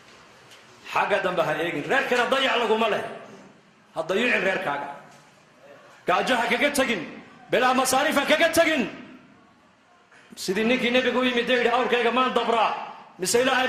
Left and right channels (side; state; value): both; identical; correlation 1.00